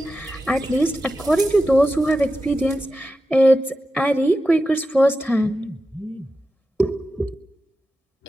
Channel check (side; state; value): both; normal; correlation 0.91